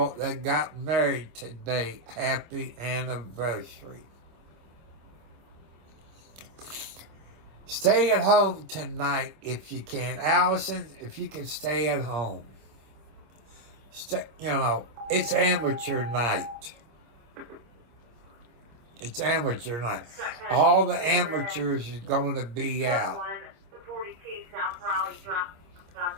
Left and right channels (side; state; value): left; late; 26 ms